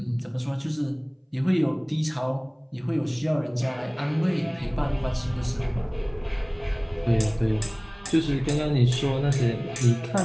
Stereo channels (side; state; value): both; identical; correlation 1.00